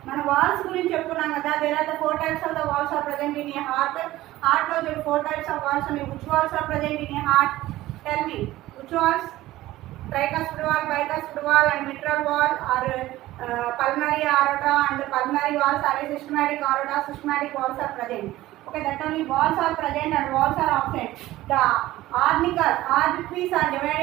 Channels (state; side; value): quieter; left; 16.3 dB